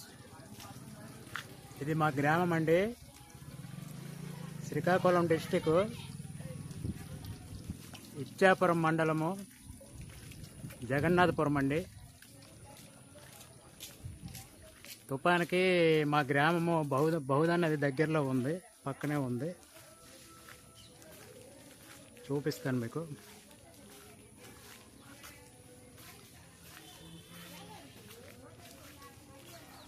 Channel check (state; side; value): identical; both; correlation 1.00